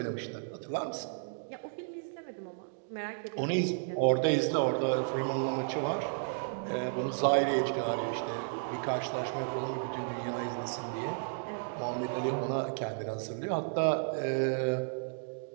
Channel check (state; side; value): silent; left; digital silence